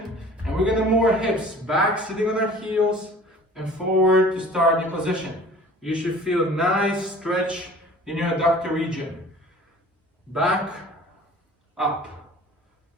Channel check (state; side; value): normal; both; correlation 0.46